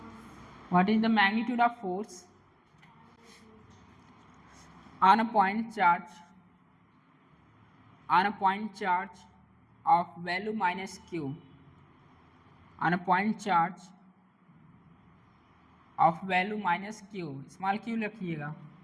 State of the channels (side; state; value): both; identical; correlation 1.00